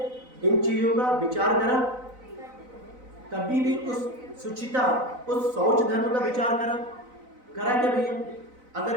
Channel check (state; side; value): late; left; 4.0 ms